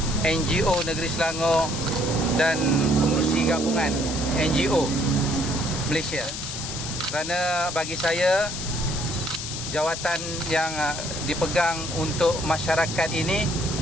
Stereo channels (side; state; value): left; noise; hiss, 6 dB below the sound